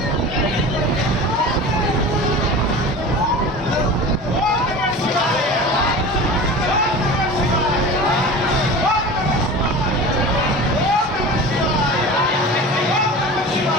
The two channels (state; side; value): normal; both; correlation 0.34